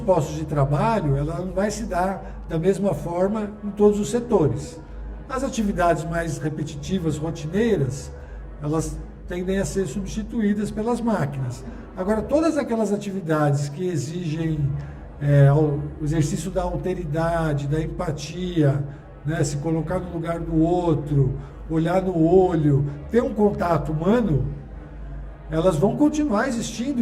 de trabalho, ela não vai se dar da mesma forma em todos os setores. As atividades mais repetitivas, rotineiras, elas tendem a ser substituídas pelas máquinas. Agora, todas aquelas atividades que exigem o exercício da alteridade, da empatia, né, se colocar no lugar do outro, olhar no olho, ter um contato humano, elas vão continuar existindo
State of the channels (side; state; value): both; identical; correlation 1.00